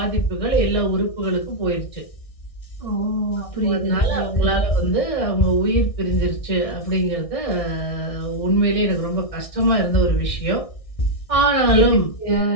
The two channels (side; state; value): right; late; 1.6 ms